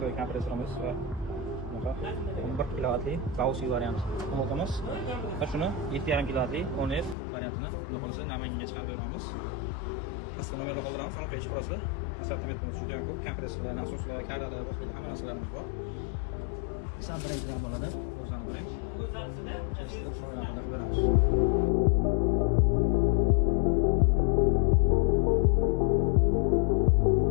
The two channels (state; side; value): drops out; right; at 7.2 s